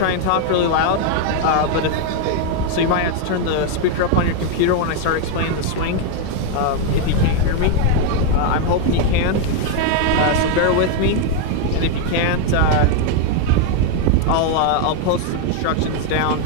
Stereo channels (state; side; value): different; both; correlation 0.01